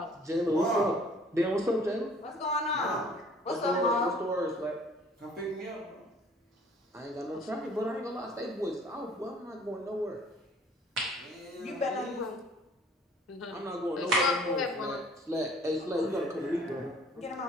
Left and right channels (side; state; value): both; normal; correlation 0.54